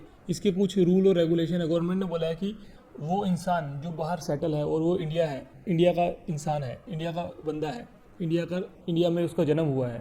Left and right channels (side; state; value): both; identical; correlation 1.00